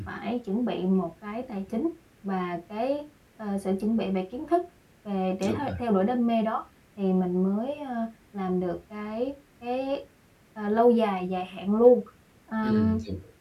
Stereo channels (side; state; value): both; identical; correlation 1.00